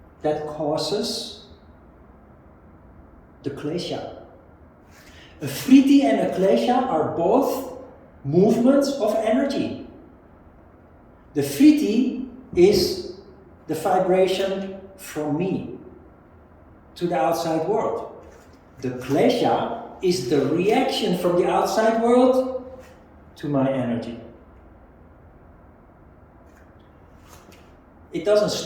That causes the klesha. A vritti and a klesha are both movements of energy. The vritti is the vibration from me to the outside world. The klesha is the reaction from the outside world to my energy. It doesn't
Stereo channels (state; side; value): identical; both; correlation 1.00